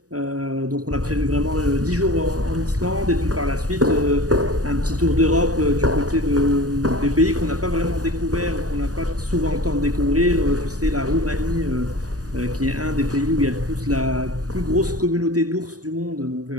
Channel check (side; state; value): left; late; 0.67 ms